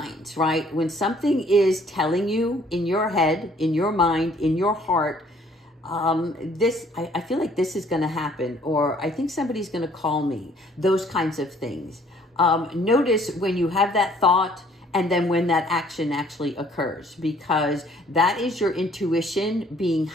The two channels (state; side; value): normal; both; correlation 0.60